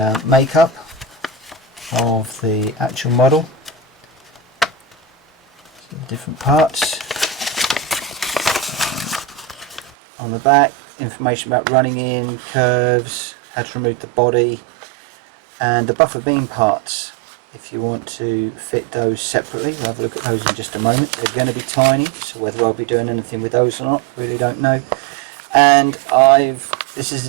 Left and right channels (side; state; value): left; drops out; at 10.0 s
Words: makeup of the actual model, so the different parts. On the back, information about running in, curves, how to remove the body, and the buffer beam parts if you want to fit those separately. We'll have a look at those in just a moment. They're going to be tiny, so whether I'll be doing anything with those or not, really don't know. And this is